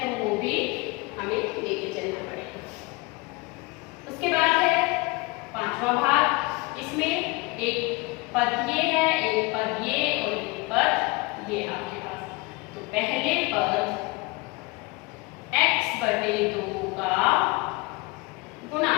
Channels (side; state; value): right; quieter; 25.4 dB